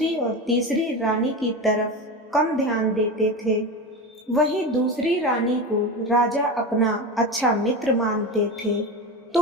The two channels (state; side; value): normal; both; correlation 0.23